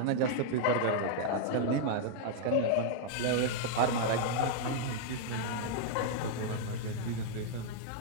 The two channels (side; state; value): both; different; correlation -0.01